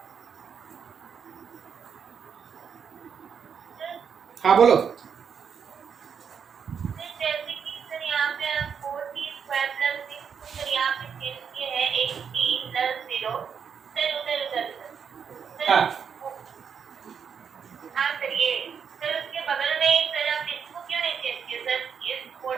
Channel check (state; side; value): quieter; left; 6.9 dB